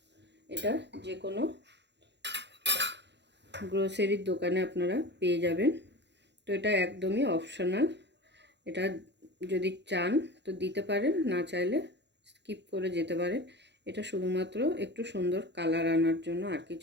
এটা যে কোনো গ্রোসারির দোকানে আপনারা পেয়ে যাবেন। তো এটা একদমই অপশনাল, এটা যদি চান তো দিতে পারেন, না চাইলে স্কিপ করে যেতে পারেন। এটা শুধুমাত্র একটু সুন্দর কালার আনার জন্য, আর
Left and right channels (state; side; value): late; left; 0.51 ms